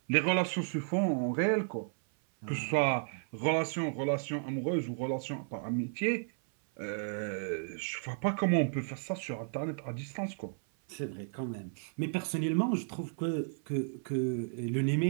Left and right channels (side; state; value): left; silent; 56 dB below the other